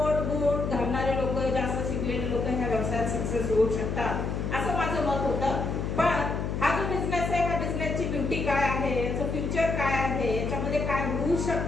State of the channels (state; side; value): noise; left; hum, 2 dB below the sound